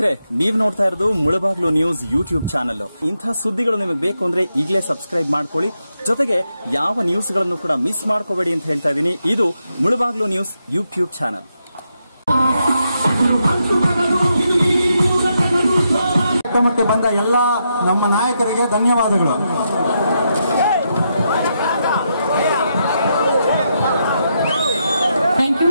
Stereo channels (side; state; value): both; inverted; correlation -0.82